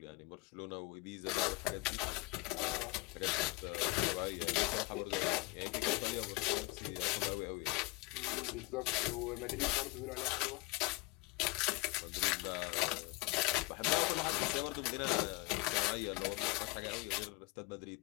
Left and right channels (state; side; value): quieter; right; 24.2 dB